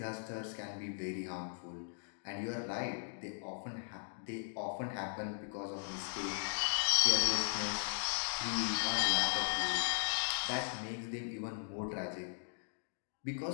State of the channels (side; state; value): right; silent; digital silence